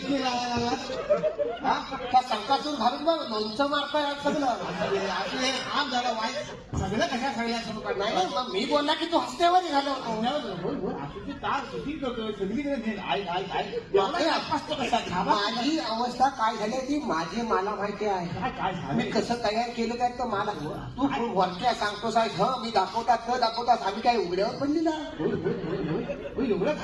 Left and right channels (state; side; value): identical; both; correlation 1.00